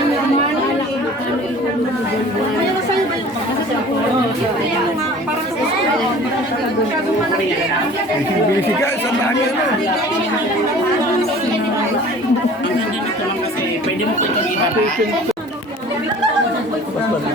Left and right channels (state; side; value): normal; both; correlation 0.46